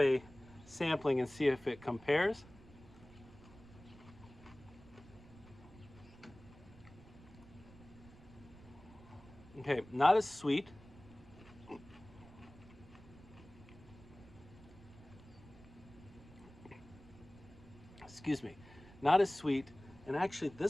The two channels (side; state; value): right; noise; rumble, 20 dB below the sound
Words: sampling and see if it compares. Okay, not as sweet. Excuse me. not as sweet, and actually